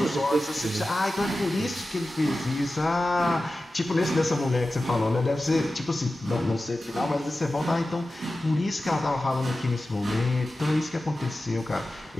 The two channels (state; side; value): normal; both; correlation 0.94